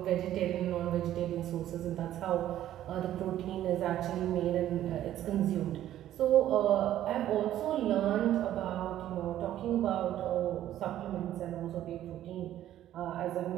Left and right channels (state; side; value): quieter; left; 12.5 dB